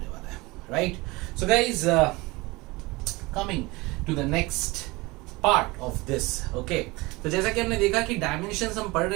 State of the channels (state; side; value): quieter; left; 23.0 dB